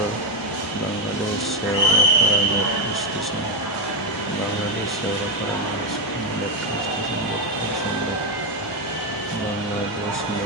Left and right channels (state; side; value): normal; both; correlation 0.07